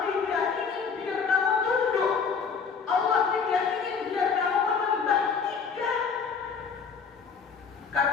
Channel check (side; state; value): right; quieter; 5.8 dB